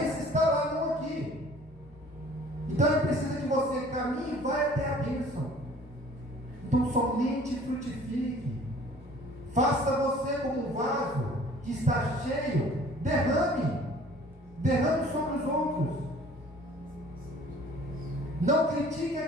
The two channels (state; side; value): normal; both; correlation 0.51